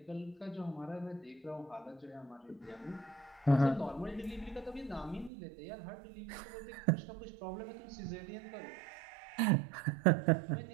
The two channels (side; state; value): left; drops out; at 5.3 s